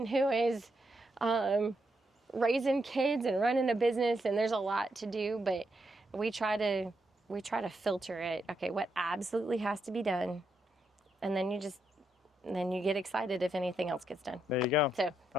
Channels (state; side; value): normal; both; correlation 0.81